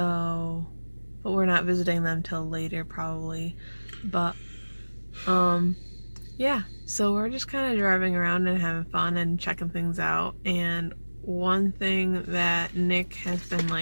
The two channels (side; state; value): both; inverted; correlation -1.00